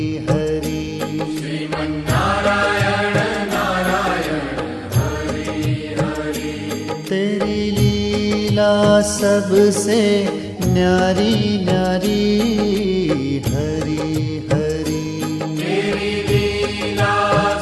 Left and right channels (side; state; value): both; identical; correlation 1.00